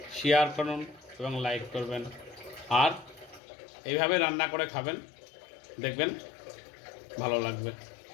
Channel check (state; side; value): drops out; right; at 3.4 s